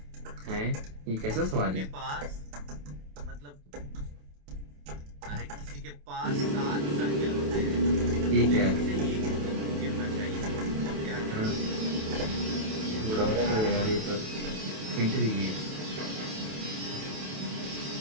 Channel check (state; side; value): late; left; 28 ms